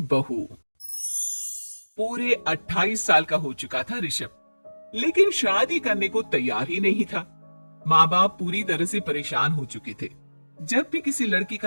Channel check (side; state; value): both; inverted; correlation -1.00